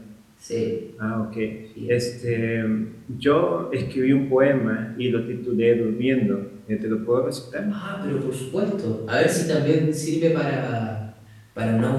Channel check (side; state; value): both; identical; correlation 1.00